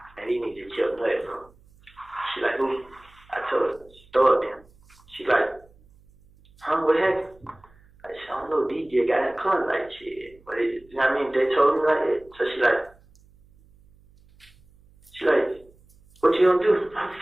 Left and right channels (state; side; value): noise; right; hum, 29 dB below the sound